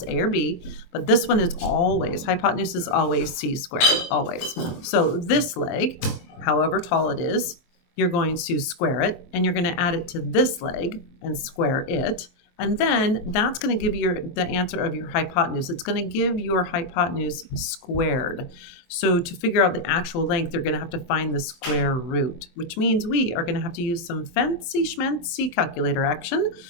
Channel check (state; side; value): late; right; 23 ms